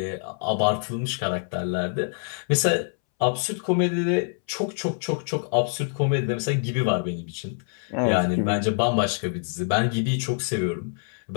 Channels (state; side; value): silent; right; 61 dB below the other